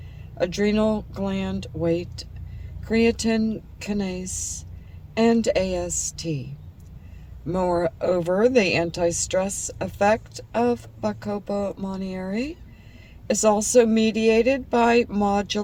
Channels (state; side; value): identical; both; correlation 1.00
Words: adrenal gland weight, creatine kinase, and AST. Moreover, the anti-stress effect of Bacopa monnieri is also mediated by